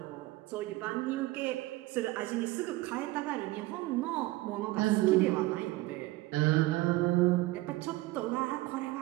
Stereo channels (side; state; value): left; quieter; 19.1 dB